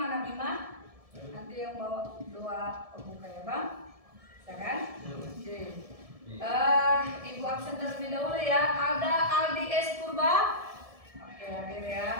Bima? Nanti yang bawa doa pembuka ya Bang? Bisa kan? Oke. Ibu absen terlebih dahulu ya. Ada Aldi S. Purba. Oke, hadir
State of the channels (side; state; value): left; late; 1.7 ms